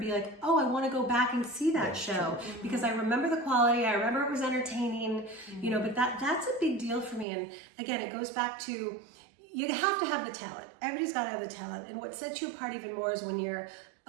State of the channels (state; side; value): drops out; left; at 7.2 s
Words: like, oh, I want to go back and see that show because I remember the quality. I remember it was entertaining, But that's a big deal for me. And again, it goes back to you have to have the talent. Everybody's got to have the talent. And what sets you apart even more is when you're